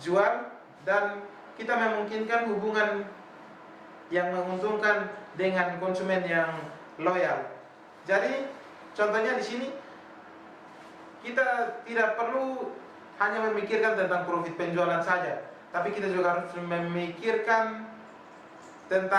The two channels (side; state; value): both; identical; correlation 1.00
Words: jual, dan kita memungkinkan hubungan yang menguntungkan dengan konsumen yang loyal. Jadi, contohnya di sini kita tidak perlu hanya memikirkan tentang profit penjualan saja, tapi kita juga harus memikirkan